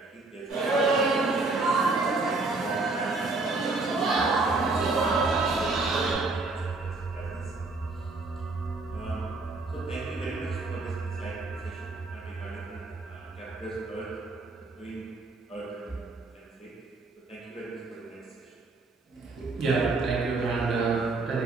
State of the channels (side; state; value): left; quieter; 3.5 dB